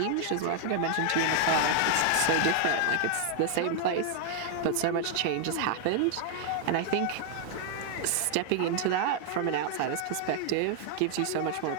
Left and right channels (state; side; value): different; both; correlation 0.00